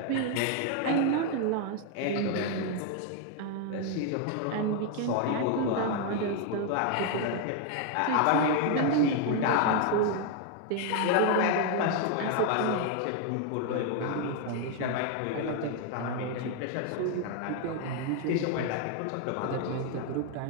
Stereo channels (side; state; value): both; different; correlation 0.00